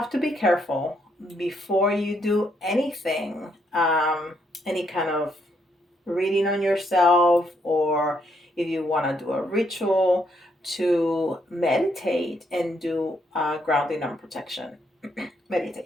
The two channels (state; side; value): normal; both; correlation 0.74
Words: to be careful before you do anything, any kind of reading on yourself, or if you want to do a ritual, to meditate and do grounding and protection